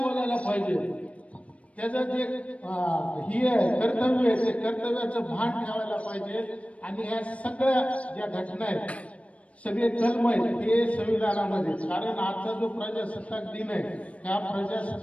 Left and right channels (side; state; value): right; late; 0.064 ms